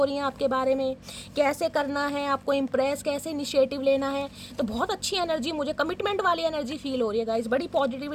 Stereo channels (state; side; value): identical; both; correlation 1.00